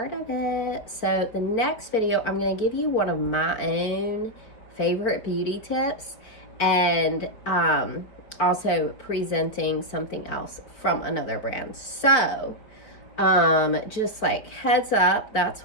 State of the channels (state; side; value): late; right; 4.5 ms